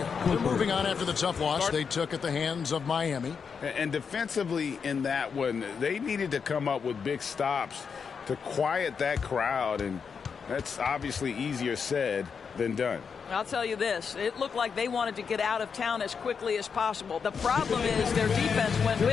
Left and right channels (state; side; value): quieter; right; 6.1 dB